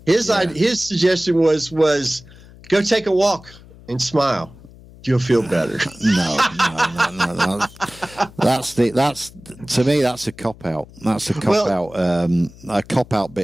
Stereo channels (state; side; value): noise; left; hum, 21 dB below the sound